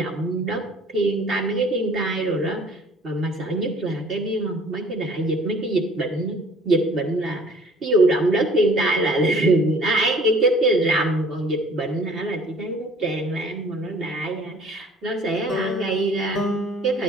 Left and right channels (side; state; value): both; normal; correlation 0.53